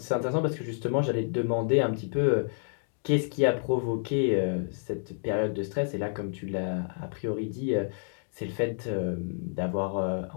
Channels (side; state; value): right; silent; digital silence